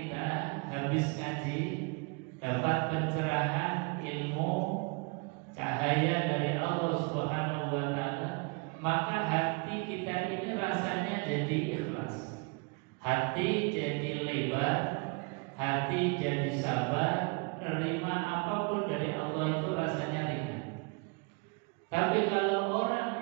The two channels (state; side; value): quieter; left; 30.9 dB